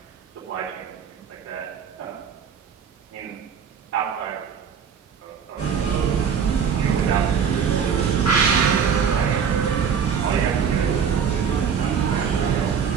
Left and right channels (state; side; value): quieter; left; 7.1 dB